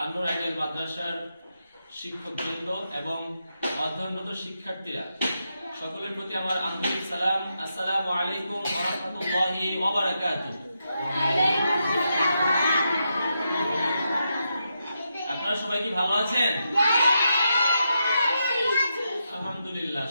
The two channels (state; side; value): inverted; both; correlation -0.84